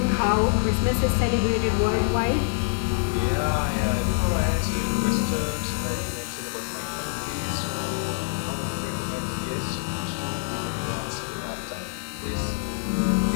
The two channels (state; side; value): silent; right; digital silence